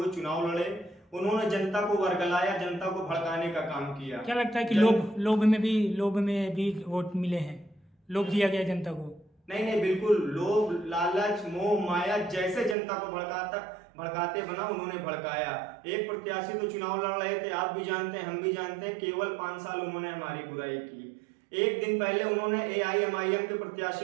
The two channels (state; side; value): drops out; left; at 12.8 s